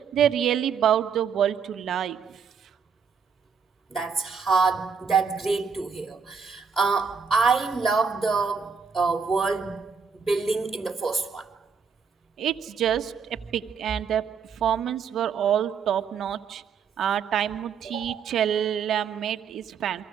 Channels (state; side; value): quieter; left; 6.2 dB